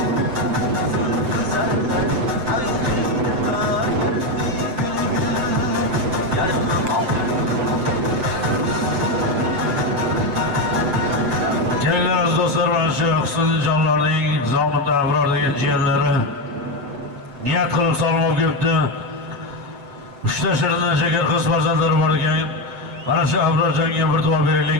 Kelinglar aziz do'stlar, mana shu Husnjonlarning Zomida Abror degan jiyanlari niyat qilib salom olib kelibdi. 3 ta shirindan shakar qiz farzandlari bor ekan. Mana shu Abrorjonga bir duo beraylik,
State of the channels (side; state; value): left; late; 7.8 ms